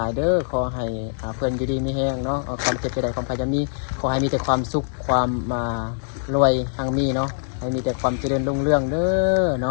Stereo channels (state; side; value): silent; right; digital silence